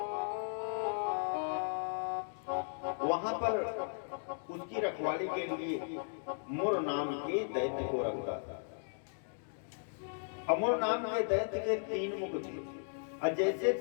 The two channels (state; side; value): silent; right; digital silence